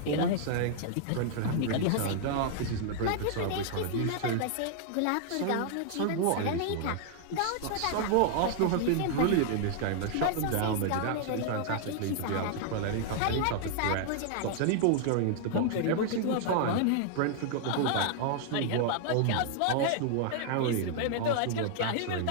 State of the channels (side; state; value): both; different; correlation 0.00